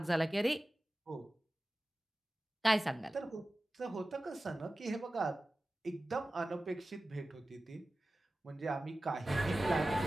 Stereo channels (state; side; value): normal; both; correlation 0.96